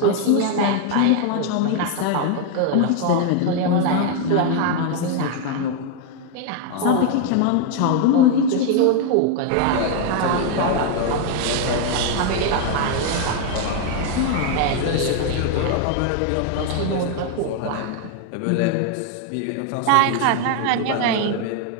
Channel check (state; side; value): different; both; correlation 0.00